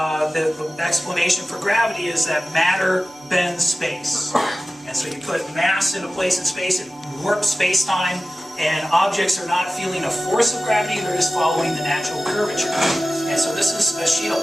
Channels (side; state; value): both; normal; correlation 0.96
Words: explanation for gravity is that matter bends space. And so you put mass in a place in space, it warps space-time, and objects are not feeling a force of gravity, they're just following the natural curvature. And so this is a sheet